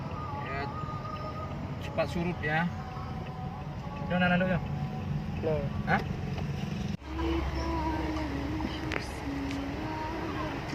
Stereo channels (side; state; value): both; identical; correlation 1.00